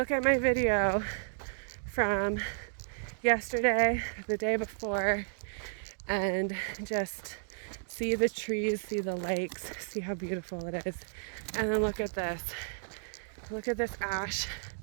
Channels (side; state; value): left; silent; digital silence